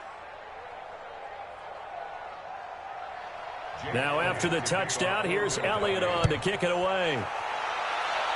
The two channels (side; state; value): both; identical; correlation 1.00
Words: Now after the touchdown, here's Elliott on to kick it away.